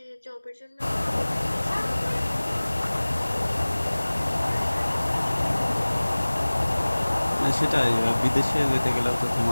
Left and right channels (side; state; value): both; inverted; correlation -1.00